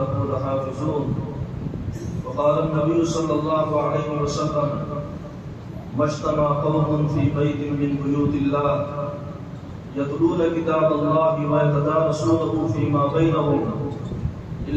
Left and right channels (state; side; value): identical; both; correlation 1.00